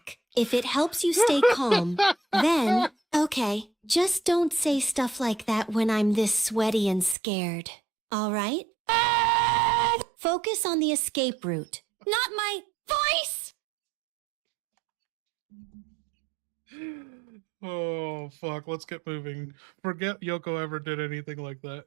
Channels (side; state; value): left; drops out; at 7.2 s